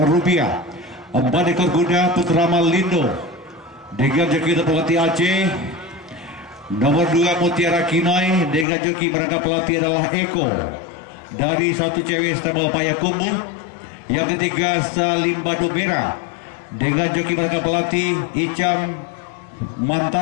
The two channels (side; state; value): right; drops out; at 8.7 s